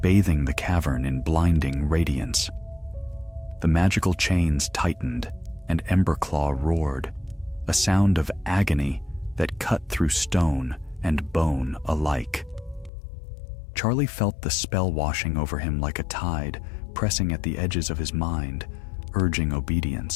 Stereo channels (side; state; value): right; drops out; at 12.9 s